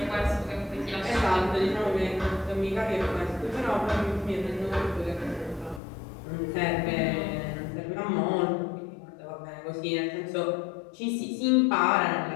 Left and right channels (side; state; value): right; drops out; at 5.8 s